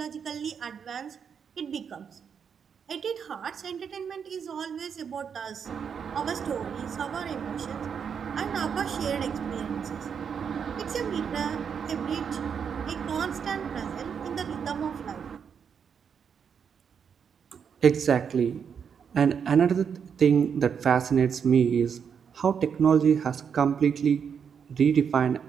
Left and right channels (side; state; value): left; quieter; 7.1 dB